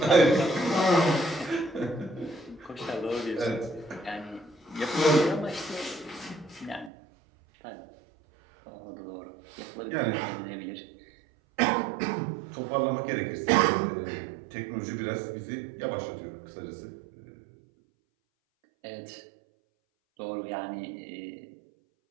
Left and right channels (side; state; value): left; drops out; at 6.9 s